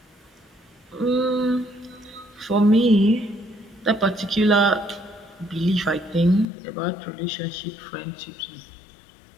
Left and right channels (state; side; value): drops out; right; at 6.5 s